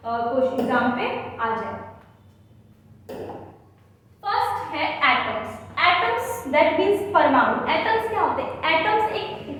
क्वेश्चन एग्जाम पे आ जाए। फर्स्ट है एटम्स। एटम्स दैट मींस परमाणु। एटम्स क्या होते हैं, एटम्स एक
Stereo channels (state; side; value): identical; both; correlation 1.00